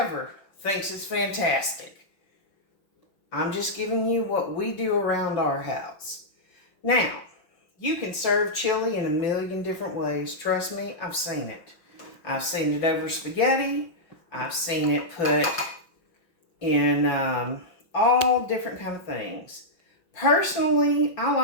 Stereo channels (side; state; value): right; late; 5.9 ms